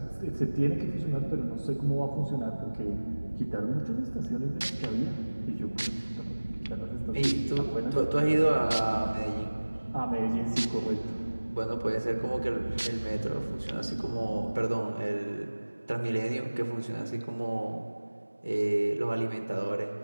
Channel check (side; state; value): both; inverted; correlation -1.00